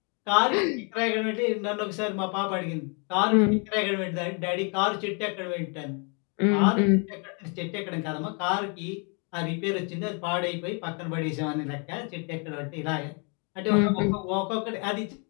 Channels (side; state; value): right; quieter; 36.5 dB